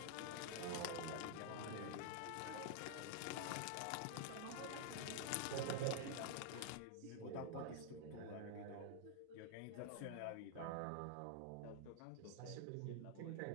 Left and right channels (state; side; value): different; both; correlation 0.00